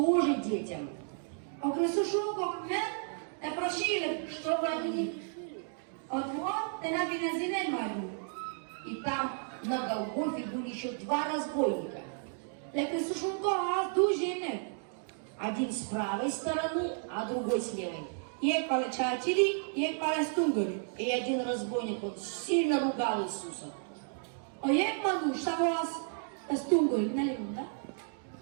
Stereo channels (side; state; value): left; silent; 56 dB below the other